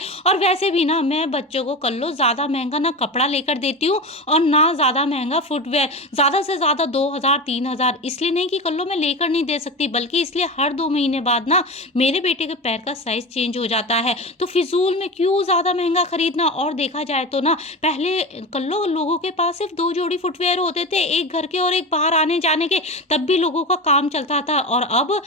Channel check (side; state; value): both; normal; correlation 0.25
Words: और वैसे भी ना मैं बच्चों को कल्लो ज़्यादा महँगा ना कपड़ा लेकर देती हूँ और ना ज़्यादा महँगा फुटवियर। ज़्यादा से ज़्यादा 2000 3000 इसलिए नहीं कि कल्लो मैं लेकर नहीं दे सकती, बल्कि इसलिए हर 2 महीने बाद ना मेरे बेटे के पैर का साइज़ चेंज हो जाता है। तो फिज़ूल में क्यों ज़्यादा महँगा खरीदना? और देखा जाए तो ना पहले कल्लो लोगों के पास सिर्फ़ 2 जोड़ी फुटवियर होते थे, एक घर के और एक बाहर आने-जाने के, तब भी लोगों का काम चलता था। और अब